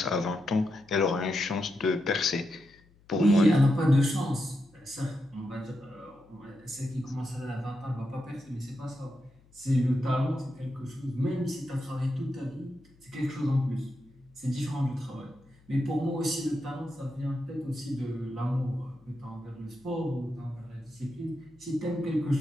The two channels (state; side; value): noise; left; hum, 29 dB below the sound